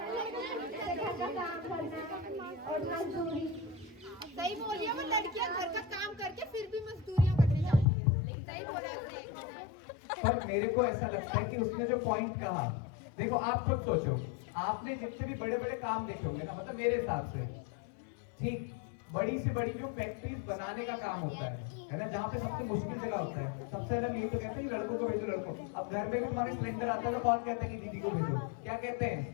घर का काम करना और मजदूरी। सही बोल रही है, वो लड़कियां घर का काम करके फिर भी मजदूरियां करने जाती है। लेकिन सही बोला आपने। पर मेरे को ऐसा लगता है कि उसने जो पॉइंट कहा, देखो आप खुद सोचो, आपने जितने भी बड़े काम देखे होंगे ना, मतलब मेरे हिसाब से, ठीक, बड़ी से बड़ी जो फैक्ट्रीज बनाने का काम होता है ना, जहाँ पे सबसे मुश्किल जगह होता है, सबसे अलग यही तो कहते हैं कि लड़कों को भेजो, लड़कों। अब घर में भी तुम्हारे सिलेंडर आता है तो कौन कहता है कि दीदी को भेजो? क्या कहते हैं?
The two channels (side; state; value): right; drops out; at 7.9 s